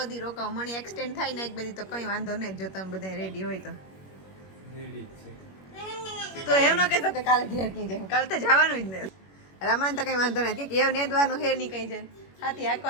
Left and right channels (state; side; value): late; right; 21 ms